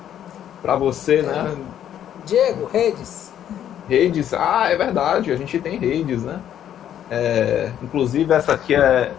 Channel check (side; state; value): right; quieter; 10.4 dB